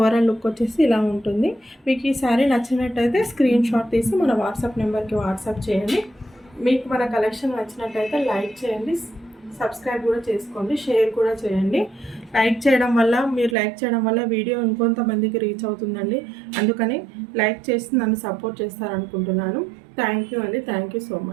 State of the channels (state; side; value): drops out; left; at 13.6 s